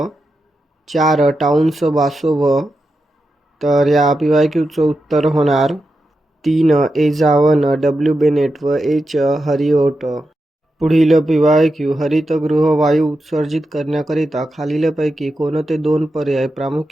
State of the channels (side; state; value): both; normal; correlation 0.88